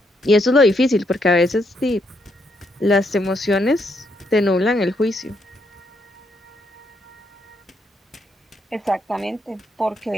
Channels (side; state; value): both; normal; correlation 0.76